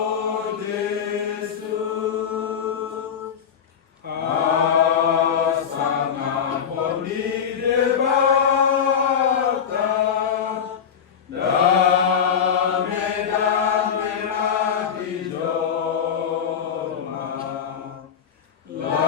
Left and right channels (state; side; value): quieter; right; 7.6 dB